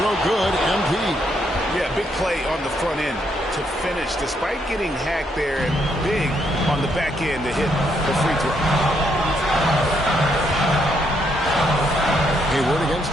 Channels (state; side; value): normal; both; correlation 0.75